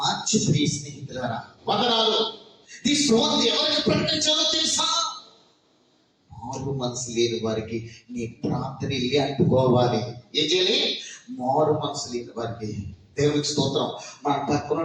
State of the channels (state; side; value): identical; both; correlation 1.00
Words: ప్రియ స్నేహితులారా. వందనాలు. ఈ సువార్త ఎవరికి ప్రకటించాలో తెలుసా? మారు మనసు లేని వారికి నీ ప్రార్థన వెళ్ళి అంటుకోవాలి. ఏం చేయాలి? మారు మనసు లేని వారికి. దేవునికి స్తోత్రం. మన